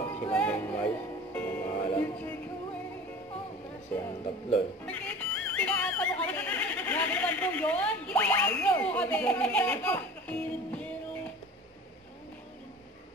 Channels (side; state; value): both; normal; correlation 0.40